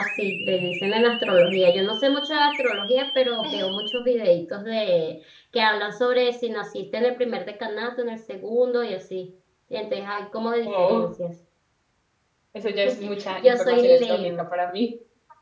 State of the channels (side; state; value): both; identical; correlation 1.00